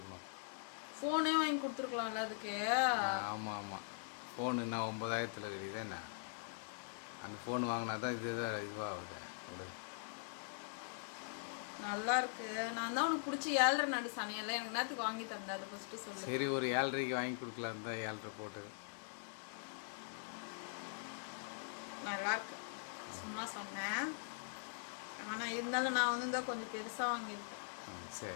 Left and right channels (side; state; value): right; silent; digital silence